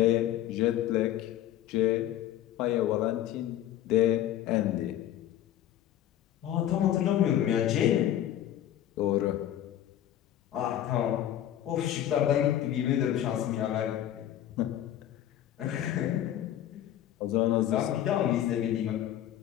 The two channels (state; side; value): quieter; right; 11.9 dB